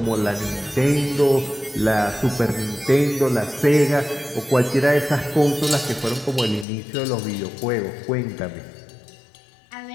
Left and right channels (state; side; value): drops out; right; at 6.7 s